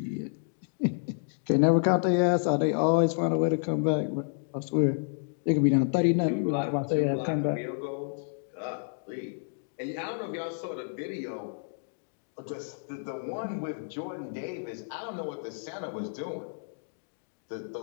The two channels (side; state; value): right; silent; digital silence